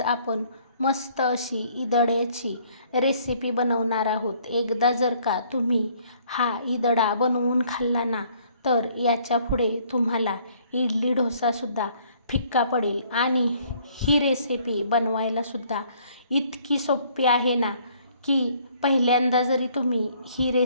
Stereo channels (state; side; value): inverted; both; correlation -0.62